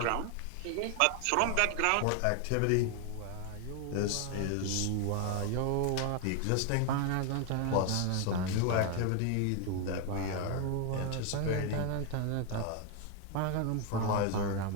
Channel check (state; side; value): different; both; correlation 0.00